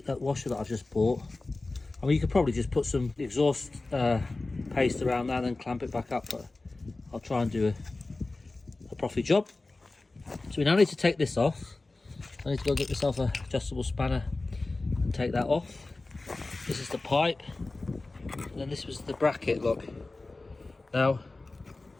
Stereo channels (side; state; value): right; quieter; 3.3 dB